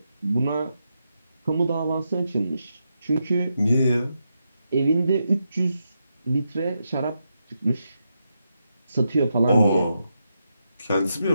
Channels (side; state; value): both; inverted; correlation -0.84